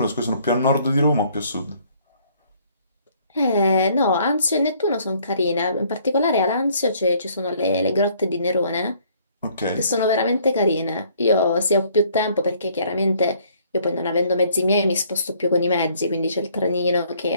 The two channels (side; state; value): both; inverted; correlation -0.62